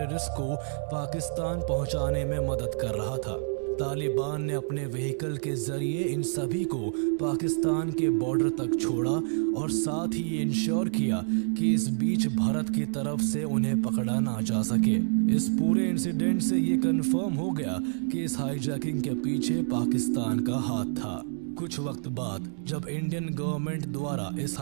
को पाकिस्तान पहुंचाने में मदद कर रहा था। तालिबान ने अपने व्हीकल के जरिए इन सभी को पाकिस्तान के बॉर्डर तक छोड़ा और साथ ही ये इंश्योर किया कि इस बीच भारत की तरफ से उन्हें पकड़ा ना जा सके। इस पूरे इंसिडेंट से ये कंफर्म हो गया कि इस हाईजैकिंग के पीछे पाकिस्तान का हाथ था। कुछ वक्त बाद जब इंडियन गवर्नमेंट द्वारा इस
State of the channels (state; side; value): silent; left; digital silence